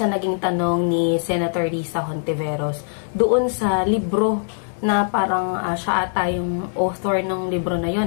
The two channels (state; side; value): silent; right; digital silence